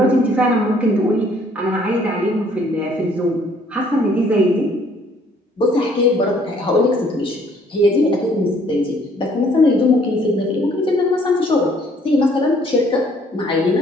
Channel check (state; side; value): normal; both; correlation 0.62